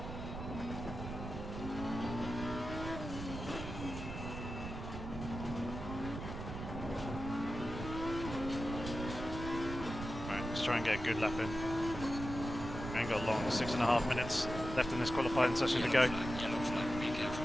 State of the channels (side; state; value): right; noise; rumble, 8 dB below the sound